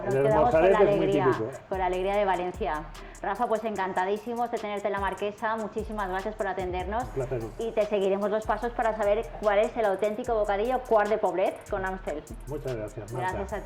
Nos quedamos con la alegría de Valencia. Rafa, pues encantadísimos de tenerte en la Marquesa. Muchísimas gracias por atendernos. Un placer. Y te seguiremos los pasos para saber cuál es el auténtico bocadillo Quart de Poblet con Amstel. Muchas gracias, Marta. Gracias a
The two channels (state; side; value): identical; both; correlation 1.00